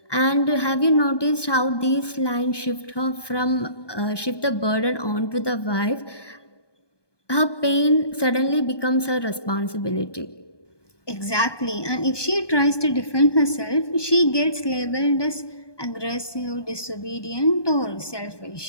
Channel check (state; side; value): late; right; 1.2 ms